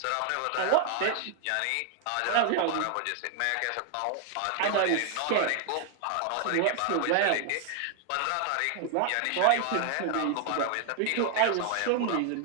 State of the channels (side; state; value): both; different; correlation 0.00